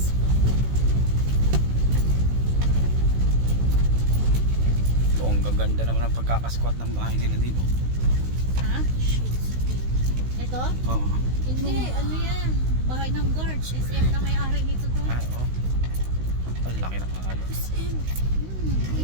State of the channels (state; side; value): late; left; 16 ms